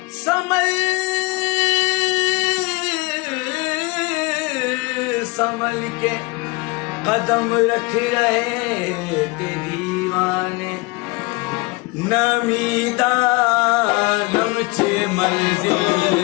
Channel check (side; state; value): right; quieter; 25.5 dB